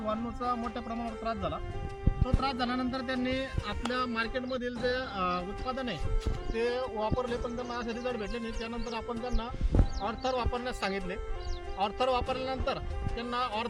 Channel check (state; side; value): identical; both; correlation 1.00